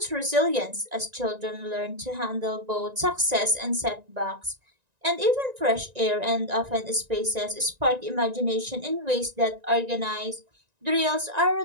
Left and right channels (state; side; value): late; left; 1.9 ms